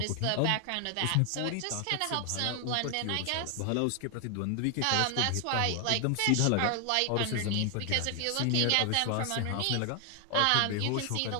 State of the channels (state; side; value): different; both; correlation 0.00